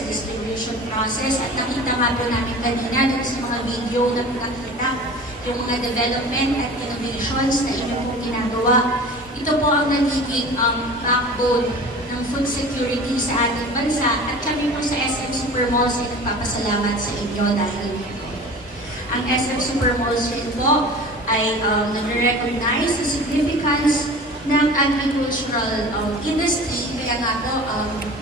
sa distribution process, at nakita nga po namin kanina dito sa mga video na pinakita, yung mga development at innovations na inyo pong ginagawa. Ito po ang nagiging backbone ng food security sa ating bansa at kami po sa SM Supermalls ay nagpapasalamat sa inyo dahil dito. Ang SM Supermalls rin po ay nag-recognize the significance ng agricultural industry. Kaya nga po,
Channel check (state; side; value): normal; both; correlation 0.39